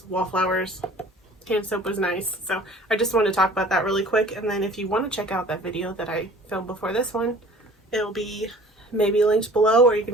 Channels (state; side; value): normal; both; correlation 0.48